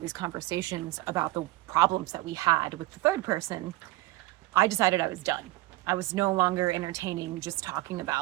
conversations about the problems that we had with the third person, I decided I was done. I was no longer entertaining just talking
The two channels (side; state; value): left; quieter; 18.6 dB